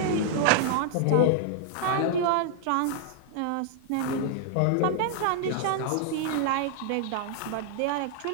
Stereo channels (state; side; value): different; both; correlation -0.01